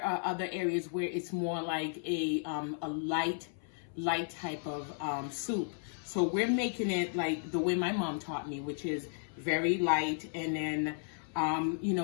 are other areas where it's more like a light type of soup. So we're making it like the way my mom taught me, which is very light, and then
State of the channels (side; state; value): right; silent; 55 dB below the other